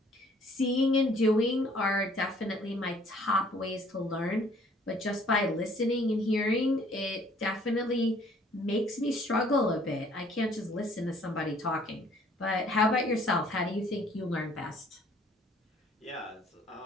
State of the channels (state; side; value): normal; both; correlation 0.59